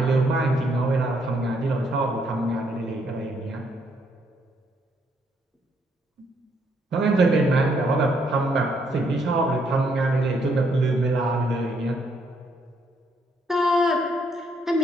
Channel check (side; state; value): both; normal; correlation 0.72